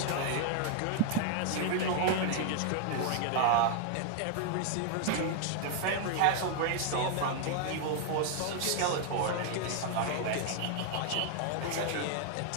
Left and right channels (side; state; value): both; different; correlation 0.00